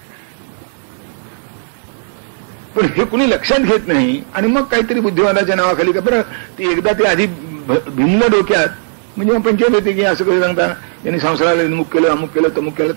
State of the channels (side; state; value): left; silent; digital silence